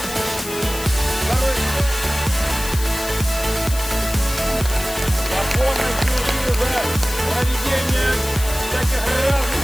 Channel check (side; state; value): left; noise; hiss, 10 dB below the sound